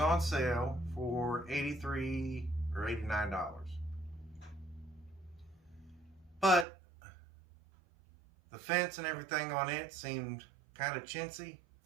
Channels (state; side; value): drops out; left; at 6.7 s